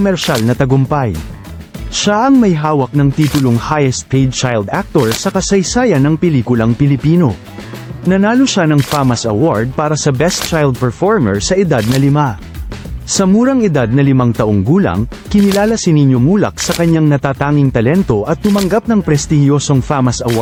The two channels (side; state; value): both; identical; correlation 1.00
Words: na tagumpay. Siya ang may hawak ng titulong Highest Paid Child Actor sa kasaysayan ng pelikulang Pilipino. Nanalo siya ng FAMAS Award para sa Best Child Performer sa edad na 5. Sa murang edad na 5 taong gulang, kinilala si Nino Mulak sa kanyang natatanging talento at tumanggap ng prestihiyosong FAMAS